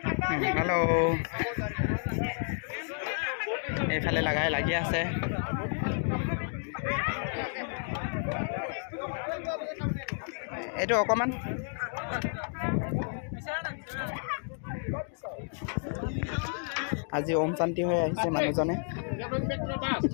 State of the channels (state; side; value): silent; right; 57 dB below the other